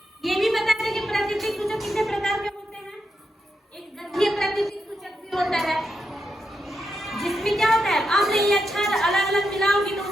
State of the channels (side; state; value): both; normal; correlation 0.84